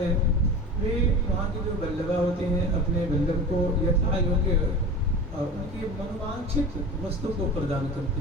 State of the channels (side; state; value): both; normal; correlation 0.33